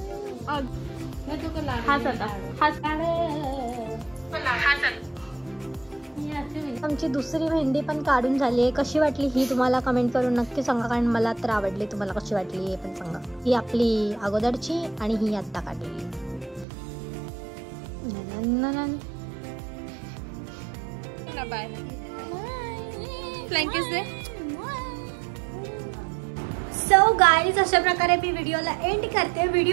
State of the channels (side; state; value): left; drops out; at 16.7 s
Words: आमची दुसरी मेहंदी पण काढून झाली आहे. कशी वाटली ही तुम्हाला कमेंट करून नक्की सांगा, कारण मला तर आवडली. तुम्हाला कशी वाटली हे पण सांगा. ही आपली अगोदरची आणि ही आत्ता काढलेली. बाय. फ्लँकीज दे. सो गाईज अशा प्रकारे मी व्हिडिओला एंड करते.